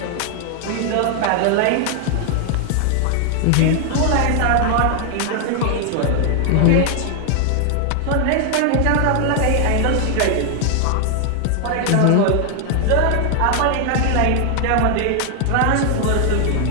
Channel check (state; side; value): different; both; correlation 0.00